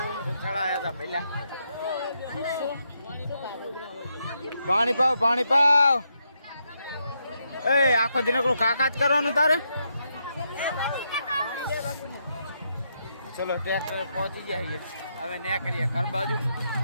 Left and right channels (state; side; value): inverted; both; correlation -0.80